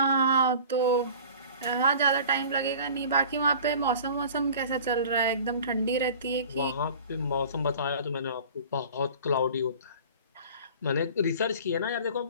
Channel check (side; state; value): both; inverted; correlation -0.43